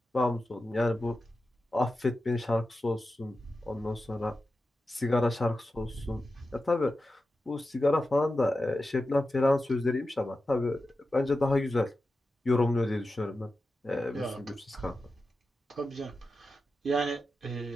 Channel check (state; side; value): normal; both; correlation 0.92